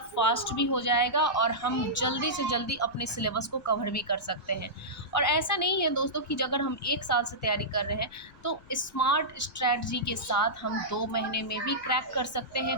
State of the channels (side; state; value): left; noise; rumble, 25 dB below the sound